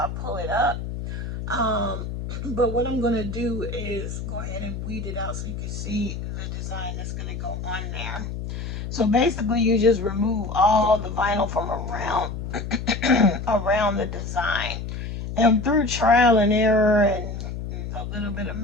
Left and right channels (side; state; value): left; noise; hum, 6 dB below the sound